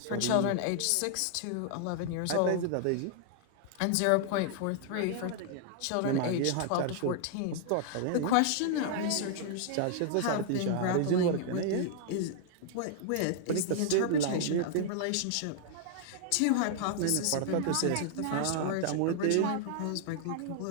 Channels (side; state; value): both; different; correlation -0.01